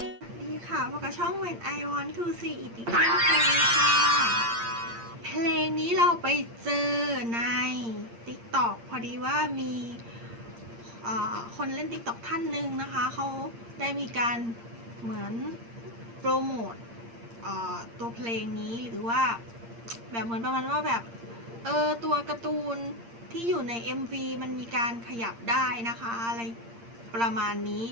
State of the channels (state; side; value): late; left; 8.7 ms